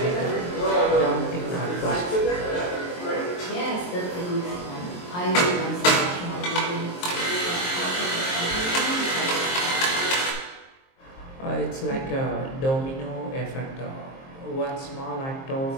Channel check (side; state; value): right; late; 23 ms